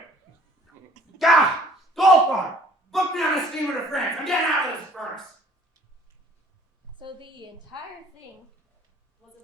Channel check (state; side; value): normal; both; correlation 0.55